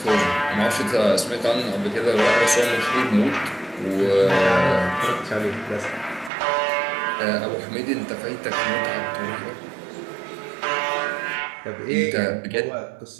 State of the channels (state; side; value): drops out; left; at 6.3 s